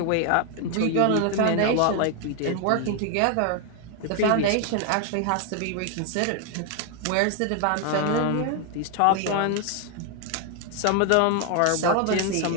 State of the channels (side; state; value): both; different; correlation 0.00